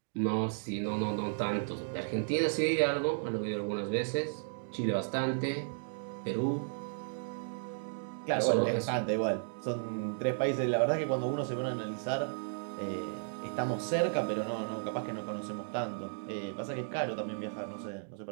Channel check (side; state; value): left; silent; digital silence